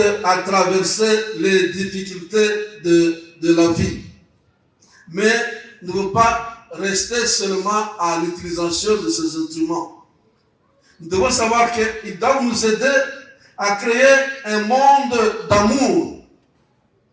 à traverser les difficultés de la vie. Mais ne veut pas rester seulement à l'utilisation de ces instruments. Nous devons savoir qu'ils doivent nous aider à créer un monde d'amour,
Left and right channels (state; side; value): identical; both; correlation 1.00